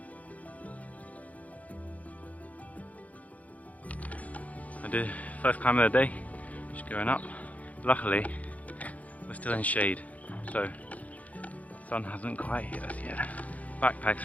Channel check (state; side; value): late; right; 0.071 ms